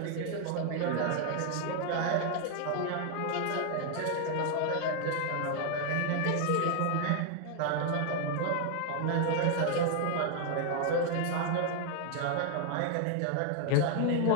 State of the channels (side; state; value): both; different; correlation 0.00